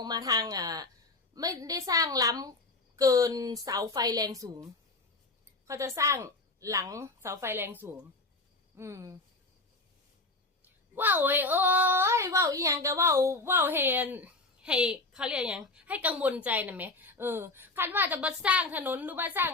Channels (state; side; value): quieter; right; 3.2 dB